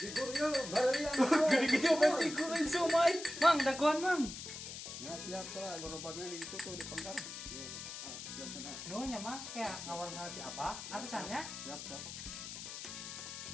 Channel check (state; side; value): noise; left; hiss, 9 dB below the sound